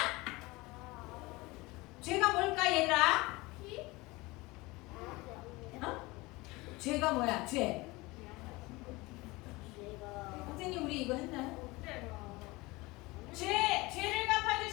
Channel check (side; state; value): right; quieter; 22.4 dB